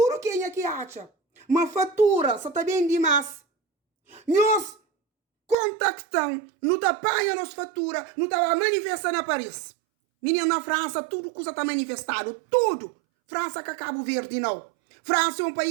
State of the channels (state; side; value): drops out; left; at 5.6 s